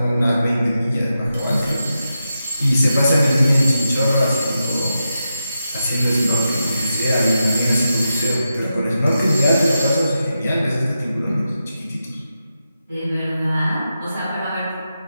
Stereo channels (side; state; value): both; inverted; correlation -0.88